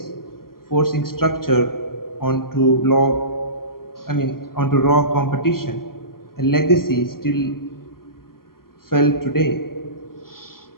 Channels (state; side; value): late; right; 0.92 ms